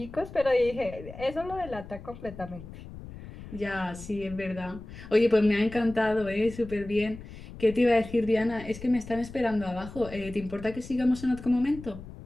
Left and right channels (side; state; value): left; noise; rumble, 14 dB below the sound